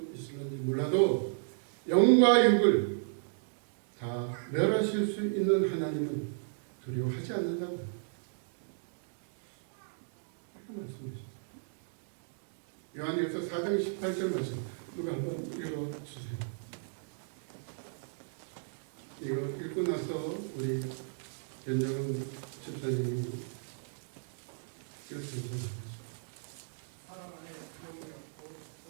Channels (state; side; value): silent; left; digital silence